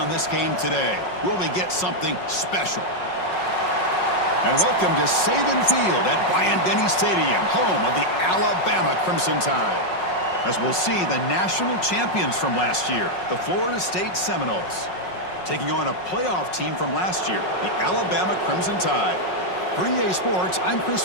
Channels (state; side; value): late; right; 5.5 ms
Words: this game today. Will we get something special? And welcome to Saban Field at Bryant-Denny Stadium, home of the Alabama Crimson Tide. As we'll see the national champions from last year, the Florida State Seminoles, taking on a playoff team from last year, the Alabama Crimson Tide. For EA Sports, I'm Chris